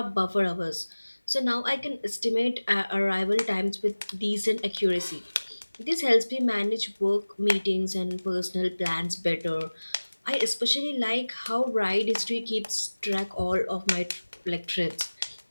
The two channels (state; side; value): inverted; both; correlation -1.00